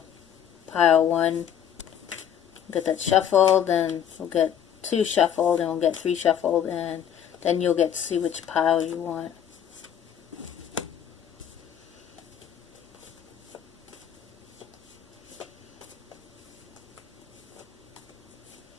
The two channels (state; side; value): quieter; right; 9.3 dB